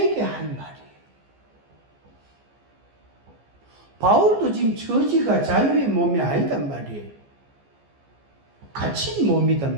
한 말이에요. 바울도 지금 처지가 자유의 몸이 아니단 말이에요. 갇힌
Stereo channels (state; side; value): late; left; 14 ms